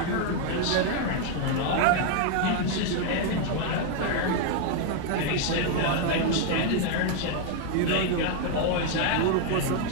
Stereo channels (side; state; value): both; different; correlation 0.00